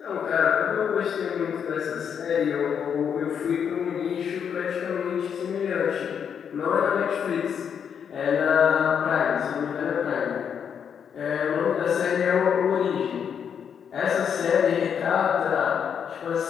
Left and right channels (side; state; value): right; quieter; 7.7 dB